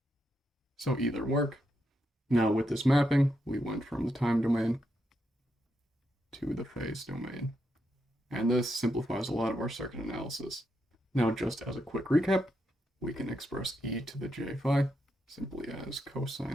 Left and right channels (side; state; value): both; normal; correlation 0.82